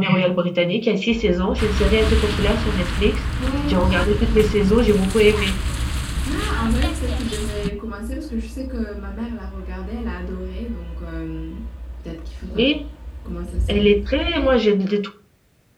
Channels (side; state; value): both; identical; correlation 1.00